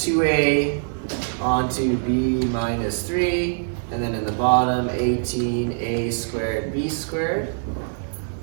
onto B minus 3, and then in the bottom 18A squared B squared.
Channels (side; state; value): left; silent; digital silence